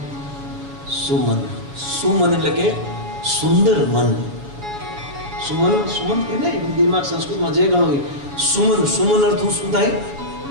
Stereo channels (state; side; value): late; left; 7.1 ms